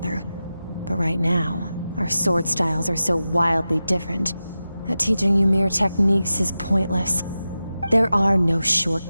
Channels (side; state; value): both; inverted; correlation -0.93